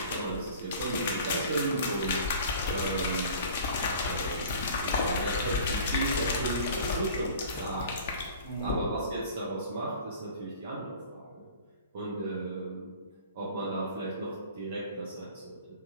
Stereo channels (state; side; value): inverted; both; correlation -0.43